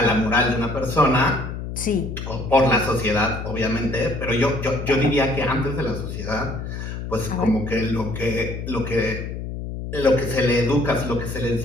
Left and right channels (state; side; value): noise; left; hum, 7 dB below the sound